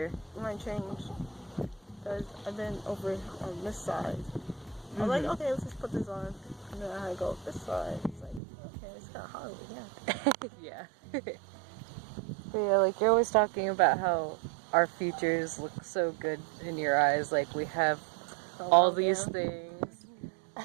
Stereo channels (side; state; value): left; drops out; at 8.4 s